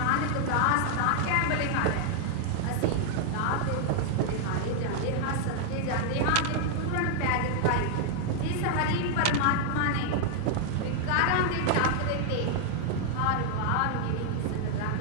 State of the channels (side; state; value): both; different; correlation 0.00